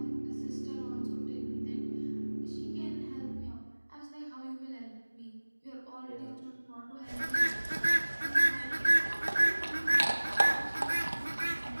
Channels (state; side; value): inverted; both; correlation -1.00